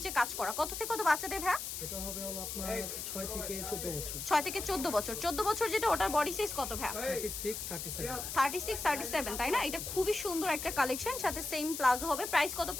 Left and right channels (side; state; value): left; noise; hiss, 6 dB below the sound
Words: কাজ করা। কত থেকে কত বাচ্চাদের ভাই? এটা হবে হলো আপনার 6 থেকে 14 বছর। 6 থেকে 14 বছর। 14 বছর যেটা, ওটার বডি সাইজ কত ভাই? 36 37। 36 37, তাই না? এটা খুবই সুন্দর একটা কালেকশন, সাথে সেম প্লাজো হবে। প্রাইস কত